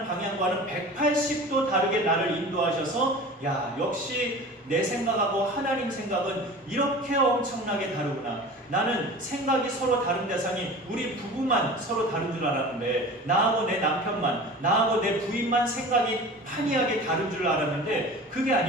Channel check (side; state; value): both; normal; correlation 0.37